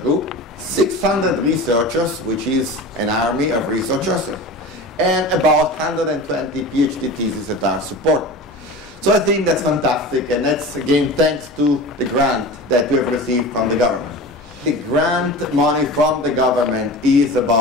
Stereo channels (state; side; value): normal; both; correlation 0.33